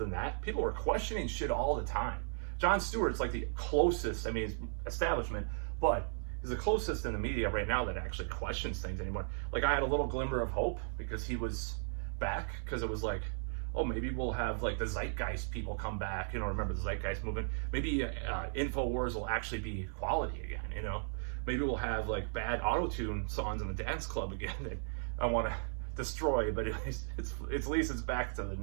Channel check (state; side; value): silent; left; 54 dB below the other